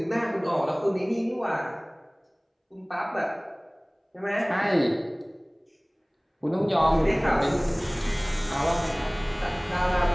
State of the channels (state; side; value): identical; both; correlation 1.00